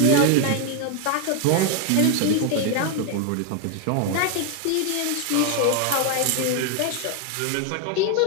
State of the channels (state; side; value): different; both; correlation 0.01